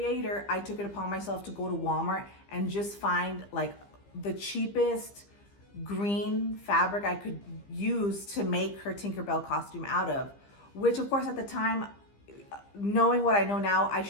I took it upon myself to go to Walmart and just find like the cheapest green fabric I could use to make her Tinkerbell costume out of, which of course at the time, knowing what I know now, I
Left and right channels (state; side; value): late; right; 15 ms